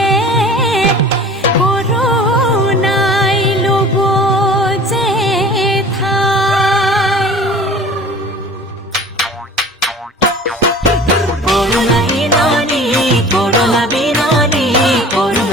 কৰোণাই ল'ব যে ঠাই কৰোণা বিননি কৰোণা বিননি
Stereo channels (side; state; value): both; normal; correlation 0.43